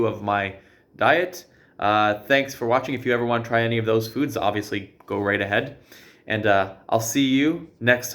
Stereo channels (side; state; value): both; identical; correlation 1.00